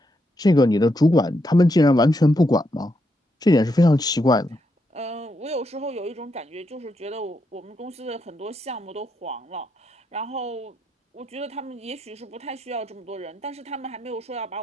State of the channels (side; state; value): both; normal; correlation 0.81